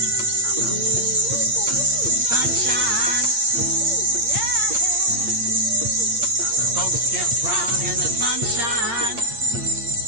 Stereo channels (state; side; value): late; left; 8.7 ms